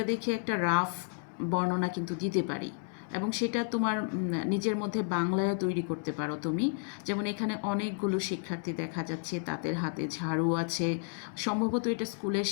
দেখে একটা রাফ বর্ণনা কিন্তু দিতে পারি, এবং সেটা তোমার নিজের মধ্যে বাংলায়ও তৈরি করতে পারো তুমি। যেমন এখানে অনেকগুলো শিক্ষার্থী দেখা যাচ্ছে, তাদের হাতে ঝাড়ু আছে, সম্ভবত এটা স্কুলের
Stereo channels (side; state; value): right; silent; 57 dB below the other